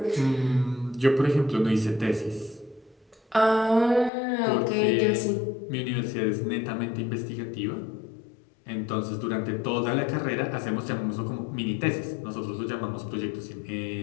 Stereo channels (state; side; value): drops out; right; at 4.1 s